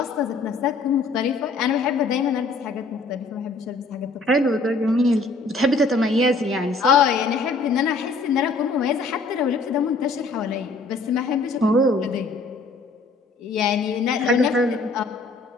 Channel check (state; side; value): quieter; right; 3.5 dB